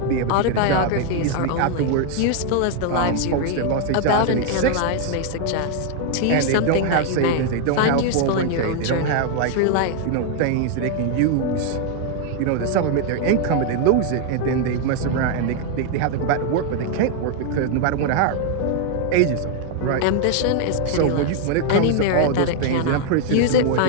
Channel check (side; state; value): both; different; correlation 0.00